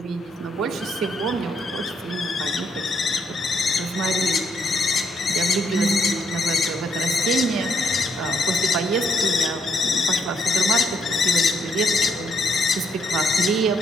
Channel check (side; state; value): both; normal; correlation 0.73